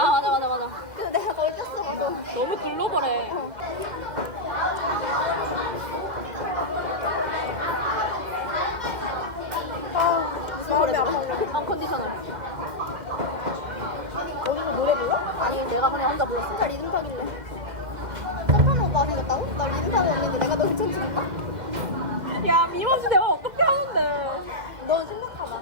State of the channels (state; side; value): late; left; 2.0 ms